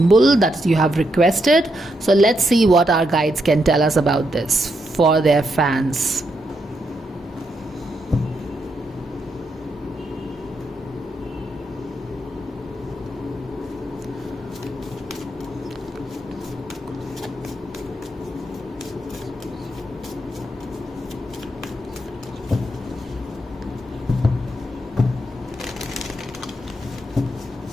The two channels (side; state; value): both; normal; correlation 0.80